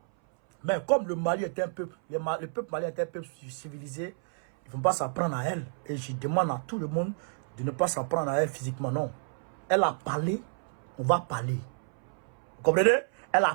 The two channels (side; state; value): left; silent; 58 dB below the other